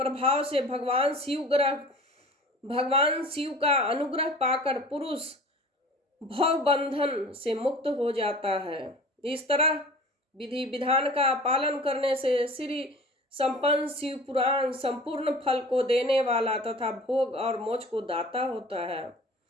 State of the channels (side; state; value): both; normal; correlation 0.41